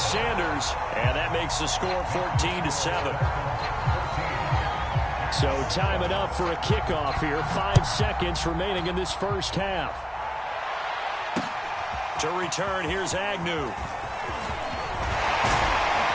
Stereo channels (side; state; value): both; identical; correlation 1.00